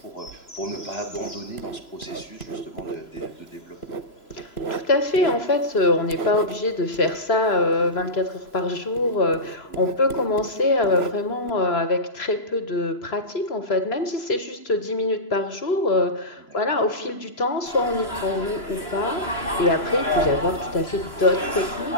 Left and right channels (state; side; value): late; right; 3.0 ms